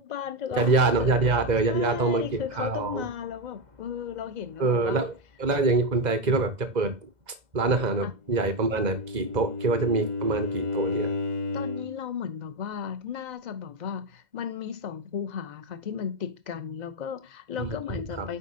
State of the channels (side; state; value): left; late; 2.0 ms